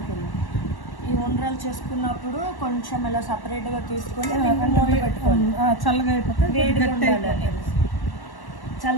ఈ ఉండ్రాలు చేసుకున్నప్పుడు కొంచెం ఇలా సపరేట్గా తీసుకొని మూత పెట్టుకోవాలి. చల్లగా అయిపోతే వేడిగా ఉండాలని.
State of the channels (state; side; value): late; right; 1.1 ms